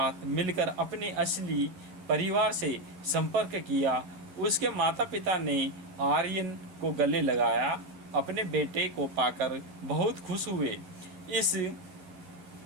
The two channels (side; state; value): left; late; 12 ms